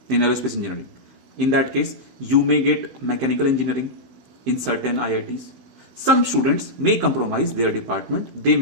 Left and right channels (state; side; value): late; left; 15 ms